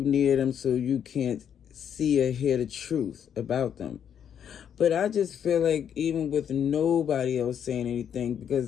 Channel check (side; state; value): right; quieter; 8.7 dB